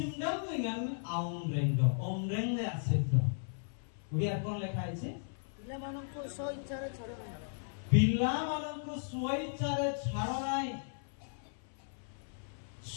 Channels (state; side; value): silent; right; 54 dB below the other